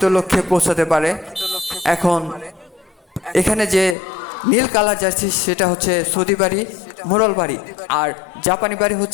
লক্ষ্যে পৌঁছাতে পারে। এখন এখানে যে নীল কালার জার্সি সেটা হচ্ছে সৌদি বাড়ি মোরল বাড়ি, আর জাপানি বাড়ি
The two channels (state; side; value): drops out; right; at 4.0 s